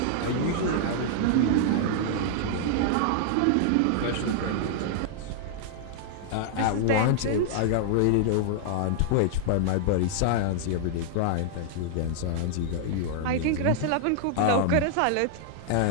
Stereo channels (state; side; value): different; both; correlation -0.01